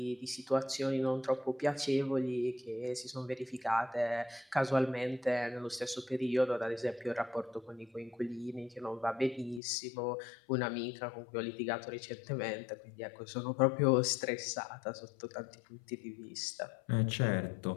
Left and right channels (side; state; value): right; drops out; at 9.6 s